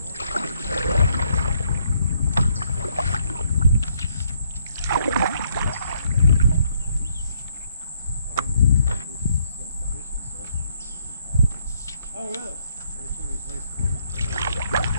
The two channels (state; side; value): inverted; both; correlation -0.71